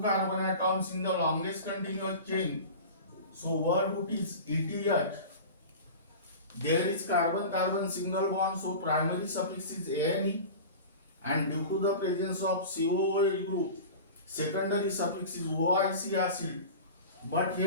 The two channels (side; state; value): both; inverted; correlation -0.34